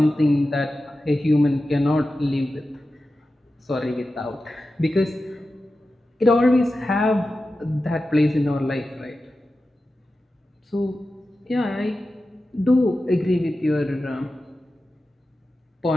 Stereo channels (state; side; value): normal; both; correlation 0.93